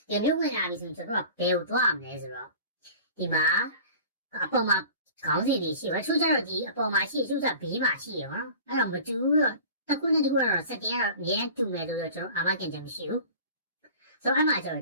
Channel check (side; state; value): both; inverted; correlation -0.41